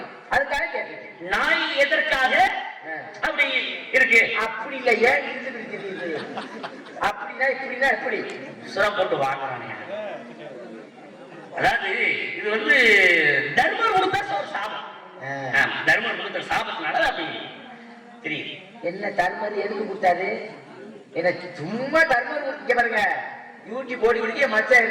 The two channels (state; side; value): identical; both; correlation 1.00